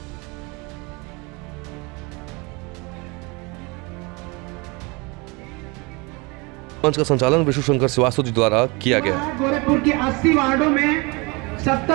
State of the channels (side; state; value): left; quieter; 27.6 dB